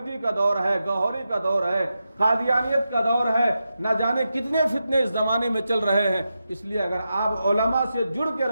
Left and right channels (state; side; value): inverted; both; correlation -0.89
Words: کا دور ہے، گوہری کا دور ہے، قادیانیت کا دور ہے، نہ جانے کتنے فتنے اس زمانے میں چل رہے ہیں۔ اس لیے اگر آپ علماء سے جڑ کے